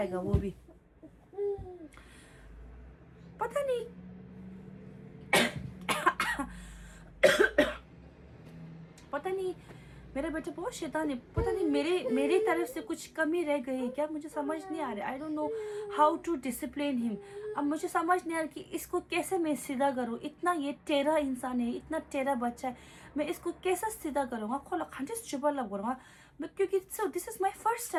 वो भी. पता नहीं मेरा बेटा बहुत शैतान है. पता नहीं मेरी तरफ से कुछ कमी रह गई है क्या, मुझे समझ नहीं आ रहा. I don't know how to discipline him. अब मुझे समझ नहीं आ रहा कि इसको कैसे मैं सीधा करूँ. इतना ये टेढ़ा इंसान है, इतना टेढ़ा बच्चा है, मैं इसको कैसे सीधा करूँगा. खोला खंडे चुपा लग करूँगा मैं, क्योंकि this is my first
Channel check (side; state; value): both; identical; correlation 1.00